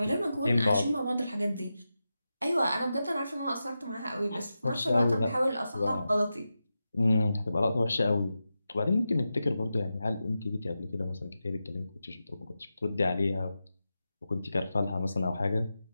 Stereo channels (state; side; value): inverted; both; correlation -0.91